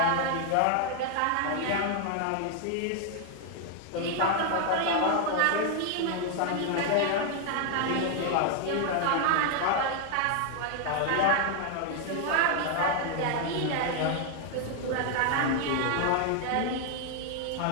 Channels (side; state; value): both; different; correlation 0.00